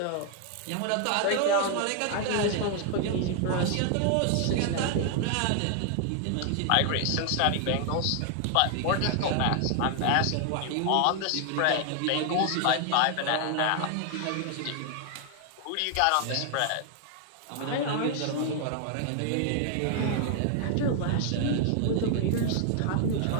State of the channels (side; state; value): both; different; correlation 0.00